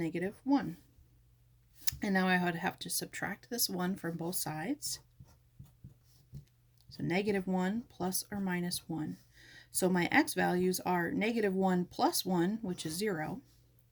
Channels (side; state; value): both; identical; correlation 1.00